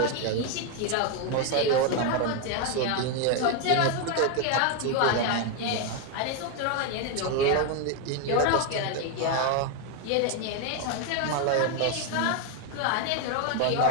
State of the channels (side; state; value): both; different; correlation 0.01